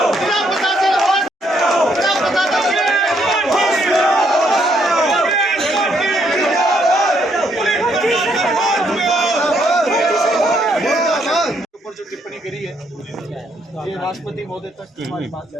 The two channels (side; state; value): both; normal; correlation 0.72